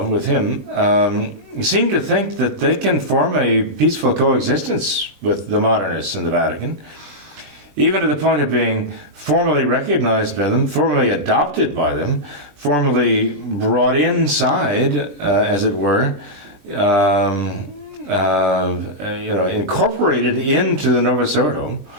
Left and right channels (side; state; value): left; late; 20 ms